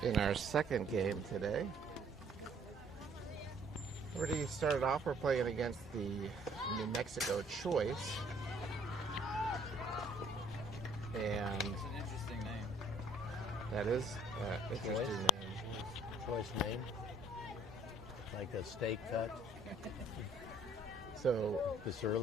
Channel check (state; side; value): normal; both; correlation 0.60